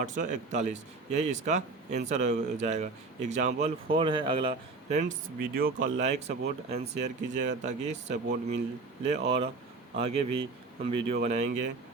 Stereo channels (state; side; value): quieter; left; 3.8 dB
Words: यही इसका आंसर हो जाएगा। एग्जाम्पल 4 है अगला। फ्रेंड्स वीडियो को लाइक सपोर्ट एंड शेयर कीजिएगा ताकि सपोर्ट मिले और आगे भी हम वीडियो बनाएंगे।